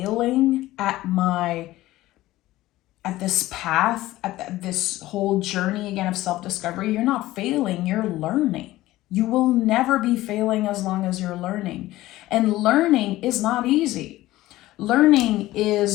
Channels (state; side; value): quieter; right; 16.6 dB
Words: at this path, at this whole journey again of self-discovery? You're not failing, you're learning. You will never be failing as long as you're learning. And learning is not easy. Learning